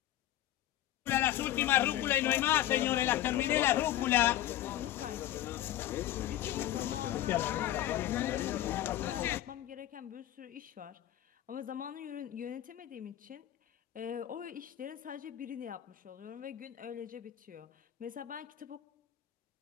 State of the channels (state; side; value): quieter; right; 13.3 dB